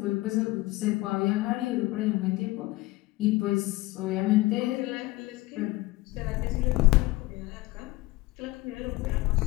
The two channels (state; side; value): quieter; right; 19.9 dB